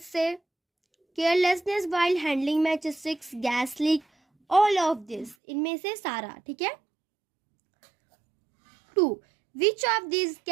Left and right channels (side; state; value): left; drops out; at 5.4 s